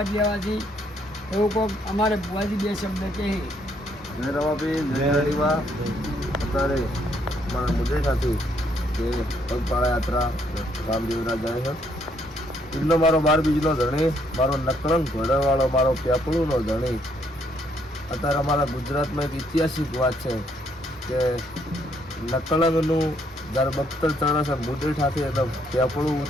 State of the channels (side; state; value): both; normal; correlation 0.70